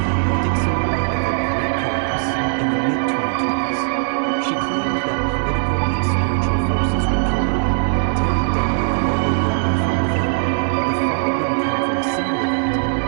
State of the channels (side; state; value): left; silent; 65 dB below the other